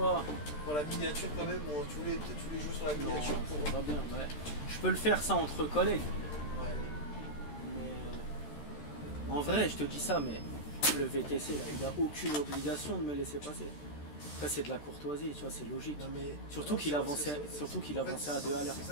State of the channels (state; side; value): late; right; 13 ms